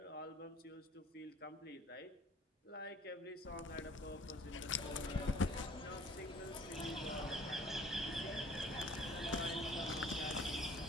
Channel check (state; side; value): normal; both; correlation 0.53